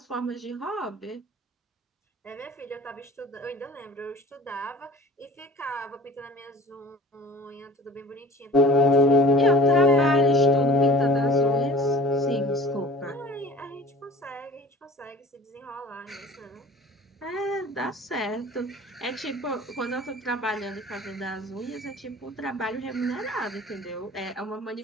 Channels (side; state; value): both; normal; correlation 0.44